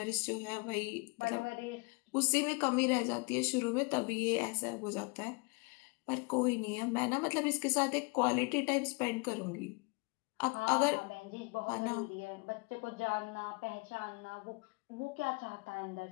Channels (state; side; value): quieter; right; 30.2 dB